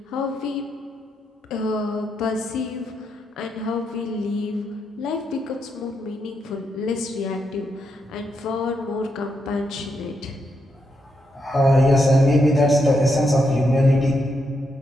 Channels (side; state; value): both; normal; correlation 0.81